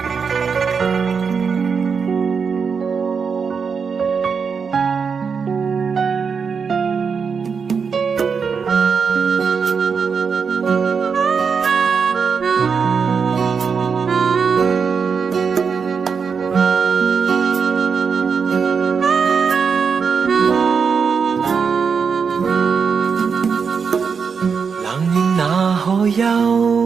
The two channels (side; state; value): left; quieter; 5.9 dB